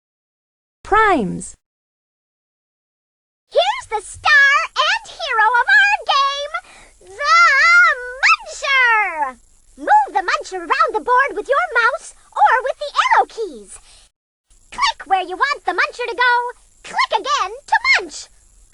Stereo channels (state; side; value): identical; both; correlation 1.00